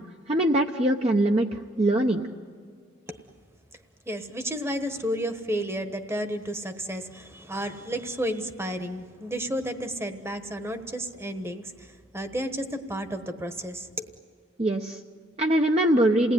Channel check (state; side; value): normal; both; correlation 0.66